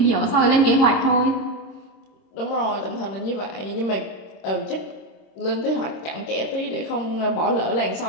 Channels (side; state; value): right; late; 26 ms